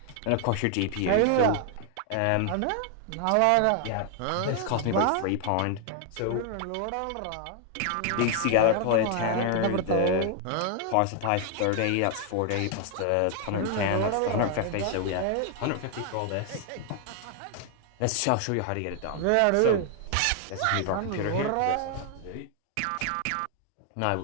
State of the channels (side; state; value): both; different; correlation 0.00